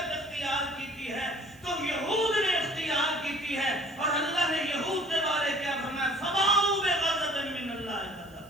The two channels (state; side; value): noise; right; hiss, 26 dB below the sound